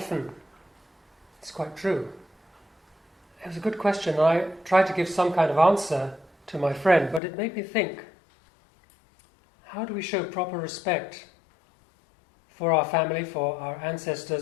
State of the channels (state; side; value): drops out; right; at 7.2 s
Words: It's quite true. It was a good question. I tried to give some kind of answer to my friend, but it made me think, how do we show proper respect for our family, for our